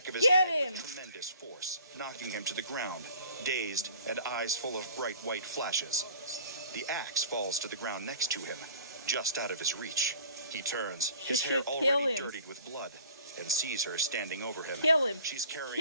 of his head with tremendous force, knocking him to the ground, dazed and eyes full of bright white flashes. The axe falls to the ground next to him, just out of his reach. He turns, She his hair should kill already him. dirtied with blood, and sees her standing over him. Kill him. She's carrying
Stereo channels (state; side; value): inverted; both; correlation -0.49